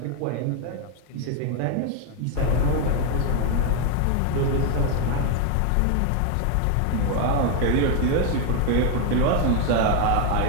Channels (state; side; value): different; both; correlation 0.01